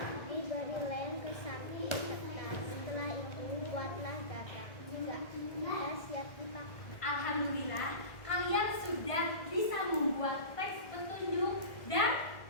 Diberi lem ke samping kertas. Setelah itu buatlah gagang. 3. Sudah siap dipakai. Alhamdulillah, kalian sudah bisa membuat teks petunjuk dan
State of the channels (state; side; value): late; right; 1.6 ms